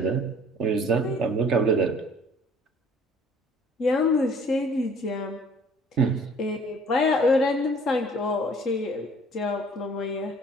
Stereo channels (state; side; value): normal; both; correlation 0.54